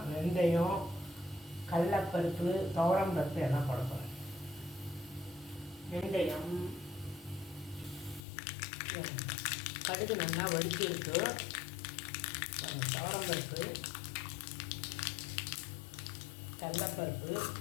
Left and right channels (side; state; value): right; drops out; at 8.2 s